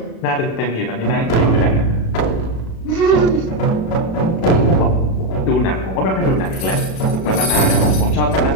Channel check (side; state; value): right; late; 36 ms